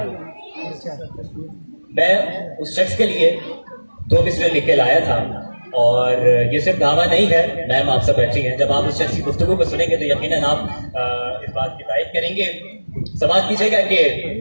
मैं उस शख्स के लिए 2 मिसरे लिख के लाया था और ये सिर्फ दावा नहीं है, मैम आप सब बैठी हैं। जब आप उस शख्स की गुफ्तगू को सुनेंगे तो यकीनन आप इस बात की तारीफ करेंगे। समाज कीजिएगा कि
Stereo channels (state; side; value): inverted; both; correlation -1.00